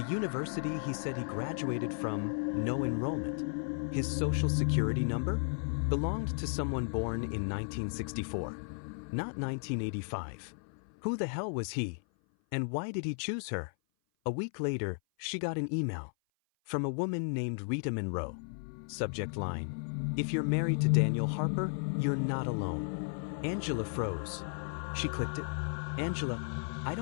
university he said he graduated from, no enrollment. His social security number belonged to someone born in 1964, not 1985. Who the hell was he? And why did he choose her? A week later, she got an email from a woman named Rita Monroe. Subject line: if you're married to Daniel Harper, you're not alone. Angela froze. She clicked it. Angela, I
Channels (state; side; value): silent; right; 55 dB below the other